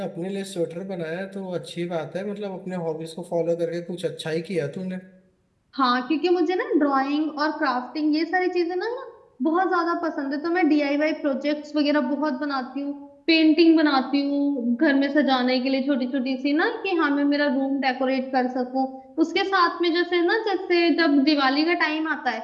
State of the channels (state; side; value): identical; both; correlation 1.00